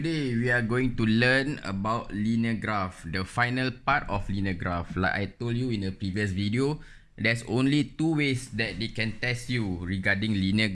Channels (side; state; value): both; identical; correlation 1.00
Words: we are going to learn about linear graph, the final part of linear graph. Like I told you in a previous video, there's only two ways that they can test you regarding linear